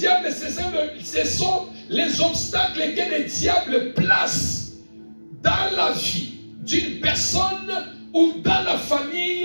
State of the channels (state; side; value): inverted; both; correlation -1.00